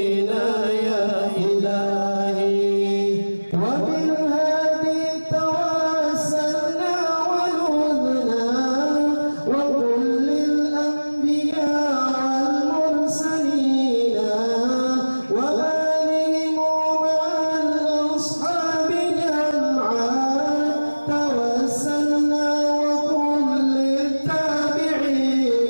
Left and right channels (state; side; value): inverted; both; correlation -1.00